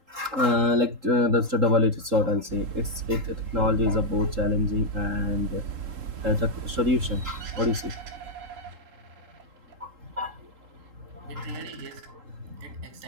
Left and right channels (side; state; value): left; late; 3.8 ms